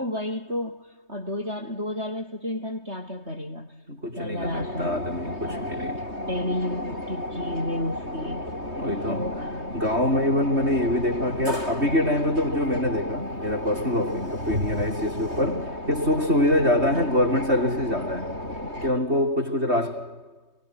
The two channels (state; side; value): late; left; 3.2 ms